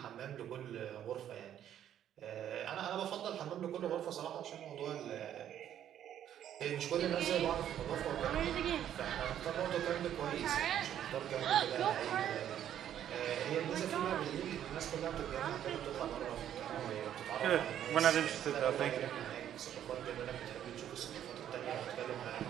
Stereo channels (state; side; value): quieter; left; 10.5 dB